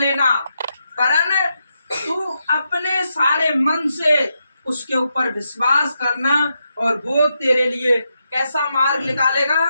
कारण तू अपने सारे मन से उसके ऊपर विश्वास करना और वो तेरे लिए कैसा मार्ग निकालेगा?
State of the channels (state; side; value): inverted; both; correlation -0.84